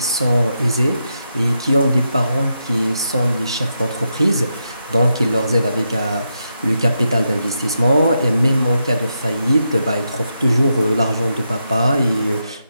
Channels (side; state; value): both; inverted; correlation -0.84